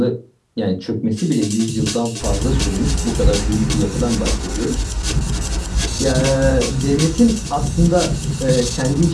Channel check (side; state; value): both; identical; correlation 1.00